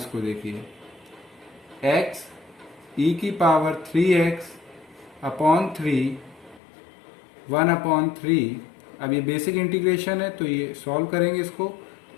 देखिए, x e की पावर 3x अपॉन 3, 1 अपॉन 3। अब ये बेसिक इंटीग्रेशन है तो ये सॉल्व करेंगे इसको,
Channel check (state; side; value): drops out; right; at 6.6 s